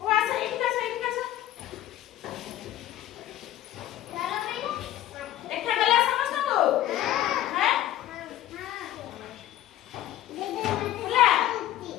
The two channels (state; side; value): quieter; right; 13.4 dB